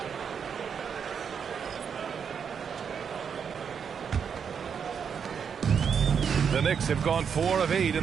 The Knicks have gone 4 of 8 in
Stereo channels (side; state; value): left; quieter; 7.0 dB